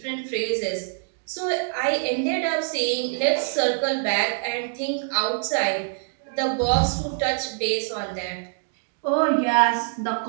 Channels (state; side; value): silent; left; digital silence